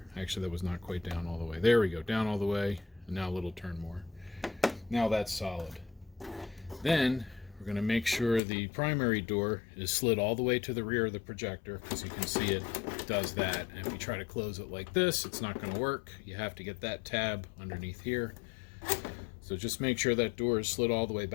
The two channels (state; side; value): drops out; right; at 8.4 s